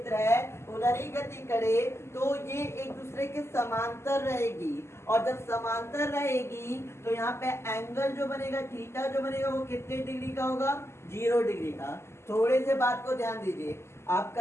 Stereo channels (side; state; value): right; late; 0.13 ms